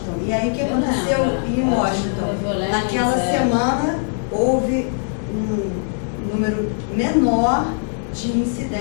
E aí o que aconteceu em Washington? Naquela semana houve um número menor de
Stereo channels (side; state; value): right; silent; digital silence